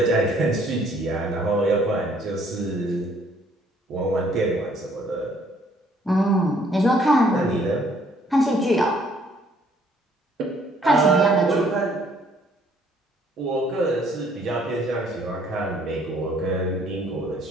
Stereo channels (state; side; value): normal; both; correlation 0.63